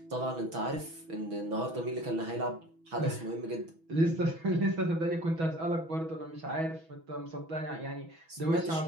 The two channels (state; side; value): late; left; 6.1 ms